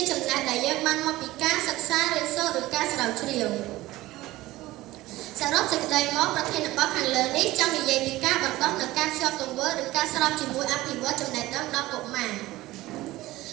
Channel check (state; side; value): quieter; left; 17.7 dB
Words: ចំណេះដែលយើងបានមកពីការសិក្សារៀនសូត្រឬការស្រាវជ្រាវសរុបសេចក្តីមកប្រធានបទខាងលើនេះចង់និយាយពីការបណ្ដុះនិងការភ្ជាប់ទង្វើឬការស្របជាមួយអភិវឌ្ឍចំណេះដឹងដល់កុមារ